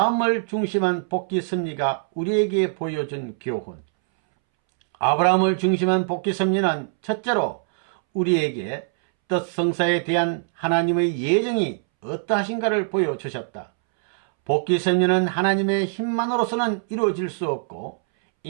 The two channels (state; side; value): silent; left; 64 dB below the other